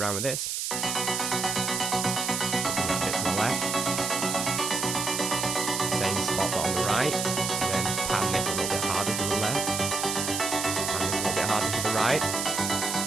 with this. A bit to the left. Same spot but on the right. And then pan this a little bit harder to the left. Harder to the right,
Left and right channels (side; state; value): right; noise; hiss, 2 dB below the sound